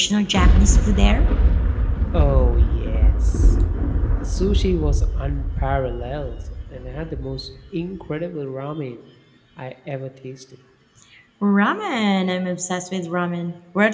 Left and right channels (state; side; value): identical; both; correlation 1.00